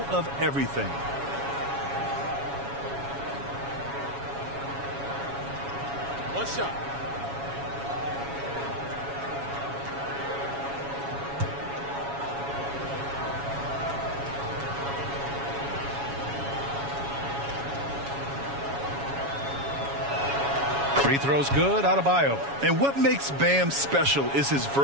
of everything. One shot. Free throw's good, Adebayo. And what makes Bam special is his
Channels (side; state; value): left; late; 7.2 ms